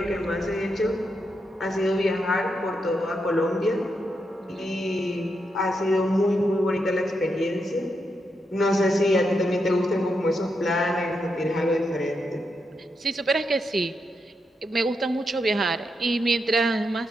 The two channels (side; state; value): both; normal; correlation 0.83